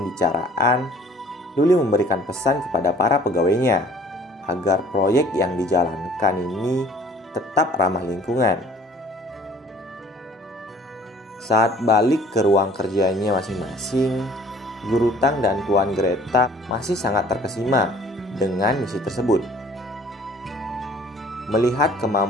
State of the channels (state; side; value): normal; both; correlation 0.53